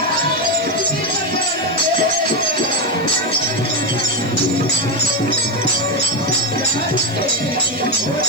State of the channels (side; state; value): left; noise; hiss, 26 dB below the sound